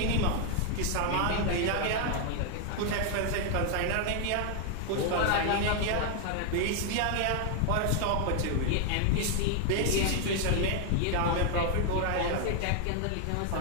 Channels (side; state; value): both; different; correlation 0.00